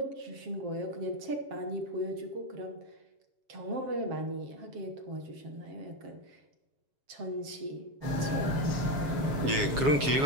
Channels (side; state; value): left; late; 7.2 ms